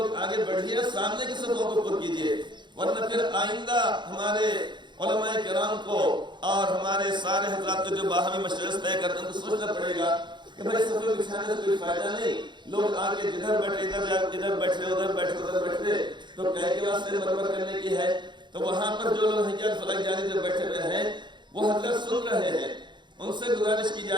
آگے بڑھیے, سامنے کی صفوں کو پر کیجئے, ورنہ پھر آئندہ ہمارے علماء کرام کو اور ہمارے سارے حضرات کو جو باہمی مشورے طے کرتے ہیں تو سوچنا پڑے گا کہ بھائی صفیں بچھانے سے کوئی فائدہ نہیں. لوگ آگے جدھر بیٹھے ادھر بیٹھے ادھر بیٹھے تو کہے کے واسطے مرمر کرنے کی ہے. تو وہاں پر جو لوگ حجاز فلک جانی جو بیٹھے ہوئے ہیں وہ حضرت سن رہے ہیں. ان سے گزارش کی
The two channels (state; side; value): late; left; 0.22 ms